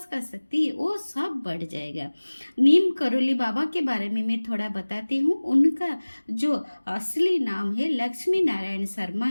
का शक्ति है, वो सब बढ़ जाएगा। नीम करोली बाबा के बारे में मैं थोड़ा बताती हूँ। उनका जो असली नाम है लक्ष्मी नारायण शर्मा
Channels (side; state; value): both; inverted; correlation -1.00